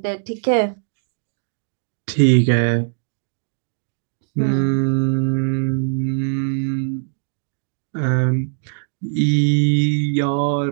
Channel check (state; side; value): silent; left; digital silence